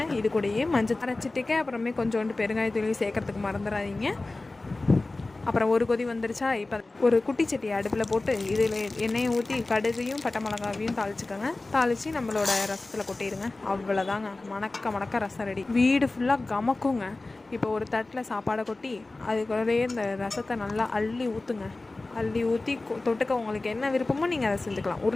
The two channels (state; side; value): quieter; right; 3.1 dB